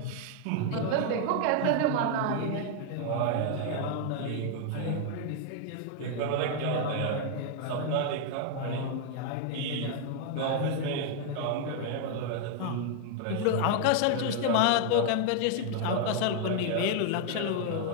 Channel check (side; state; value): both; different; correlation 0.00